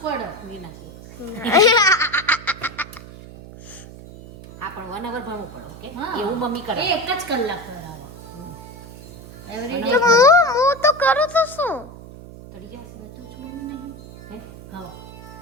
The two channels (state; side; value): noise; right; hum, 16 dB below the sound